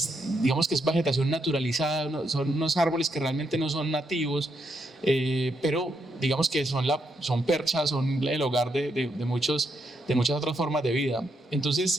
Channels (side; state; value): both; normal; correlation 0.79